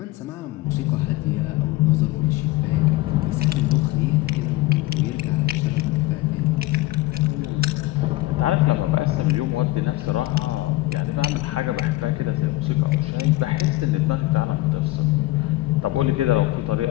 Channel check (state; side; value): quieter; right; 18.0 dB